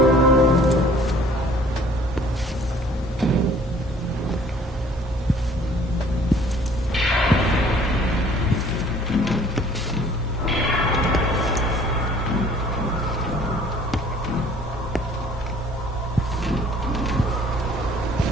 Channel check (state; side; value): normal; both; correlation 0.55